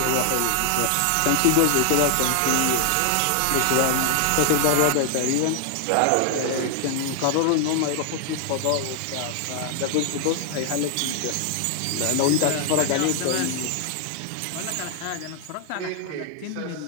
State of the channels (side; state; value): both; different; correlation 0.00